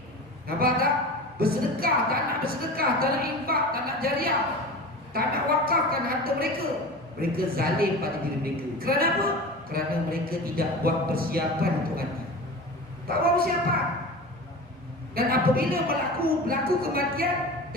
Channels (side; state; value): both; normal; correlation 0.32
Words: Nampak tak? Bersedekah, tak nak bersedekah, tak nak infak, tak nak jariah, tak nak wakafkan harta mereka. Mereka zalim pada diri mereka. Kerana apa? Kerana mereka tidak buat persiapan untuk mati. Tak buat persiapan. Dan apabila berlaku kematian,